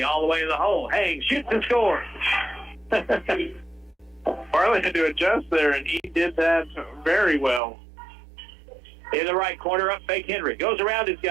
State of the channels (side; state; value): left; drops out; at 7.6 s